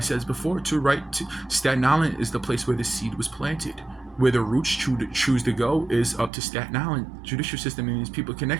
before too, right? Staten Island is the place where the seed was planted. Where the roots choose to go is up to Staten Island judicial system and these people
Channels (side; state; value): left; drops out; at 6.3 s